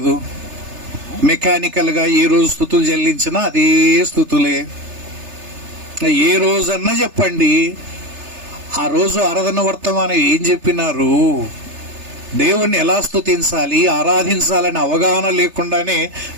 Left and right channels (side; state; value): left; late; 3.3 ms